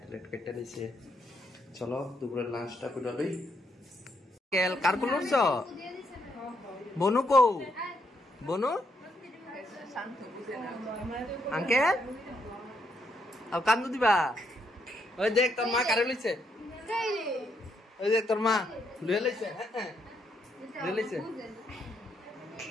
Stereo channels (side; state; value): both; normal; correlation 0.76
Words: ট্যালাড কেটে নিছে চলো দুপুরের লাঞ্চটা করে লই কেল কার কোন উঠছ বনু কো বনু আঙ্কেল আর কান্দু দিবা ওই দেখ তোর মা কারে লইছে ওই দেখ তোর মা লইয়া লইছে হ্যাঁ লইয়া লইছে